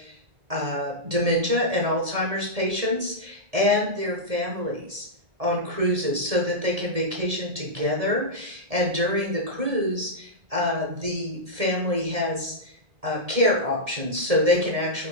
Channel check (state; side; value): late; left; 1.7 ms